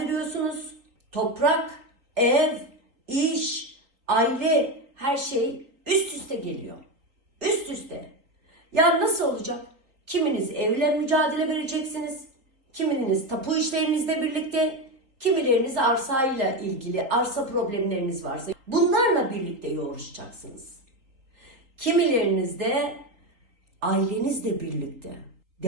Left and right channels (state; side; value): late; left; 4.0 ms